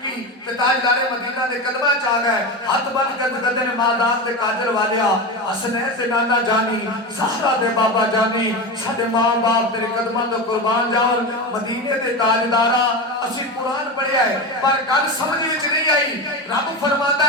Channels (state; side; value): normal; both; correlation 0.21